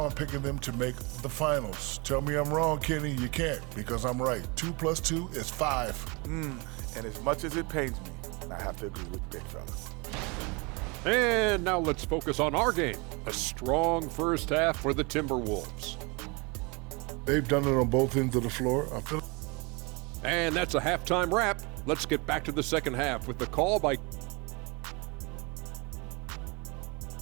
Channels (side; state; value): left; quieter; 28.7 dB